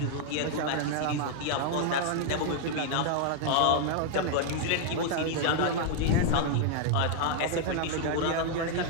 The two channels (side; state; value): both; different; correlation 0.00